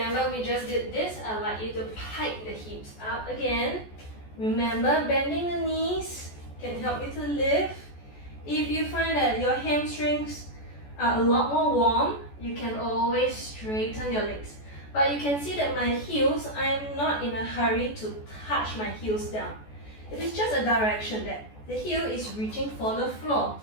we just did this. I'd like you to pike the hips up again. Remember, bending the knees can help you to lift. If you find that your hamstrings are a lot more warm, you can always straighten your legs. But you can see that my heels, I am not in a hurry to touch my heels down. It is just a direction that the heel is reaching for the floor.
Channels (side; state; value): right; late; 14 ms